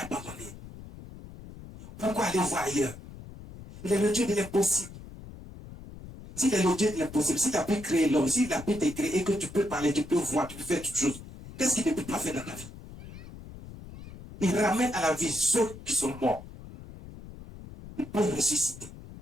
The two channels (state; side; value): noise; left; rumble, 15 dB below the sound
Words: Pourquoi aller voir ailleurs? Il est le Dieu de l'impossible. S'il est le Dieu de l'impossible, s'il a pu créer l'homme, s'il a pu te créer et que tu peux parler, tu peux voir, tu peux faire toutes choses, qu'est-ce qu'il ne peut pas faire dans ta vie? Il ramène à la vie ceux qui sont morts. Ils peuvent ressusciter.